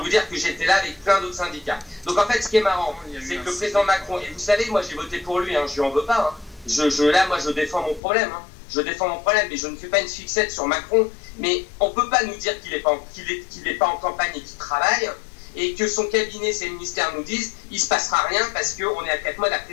dire que j'étais là avec plein d'autres syndicats. Donc en fait, ce qui est marrant, c'est que le président Macron, et vous savez, moi j'ai voté pour lui, hein, je lui en veux pas, hein. Là, moi, je défends mon problème. Hein. Je défends mon problème, mais je ne fais pas une fixette sur Macron. Mais on ne peut pas nous dire qu'il n'est pas en campagne et qu'il travaille, et que son cabinet, ses ministères nous disent il ne se passera rien parce qu'on est à 4 mois de la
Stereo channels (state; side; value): drops out; right; at 8.0 s